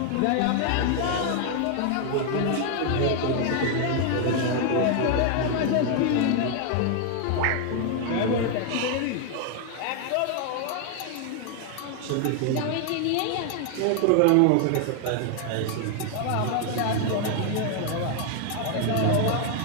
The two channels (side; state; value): both; different; correlation 0.00